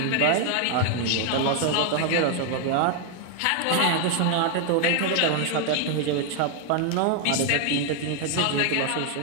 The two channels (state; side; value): different; both; correlation 0.00